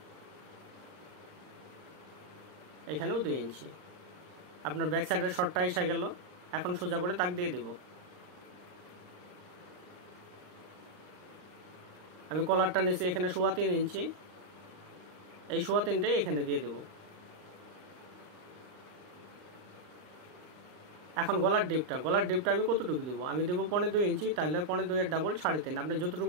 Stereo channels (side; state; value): left; late; 39 ms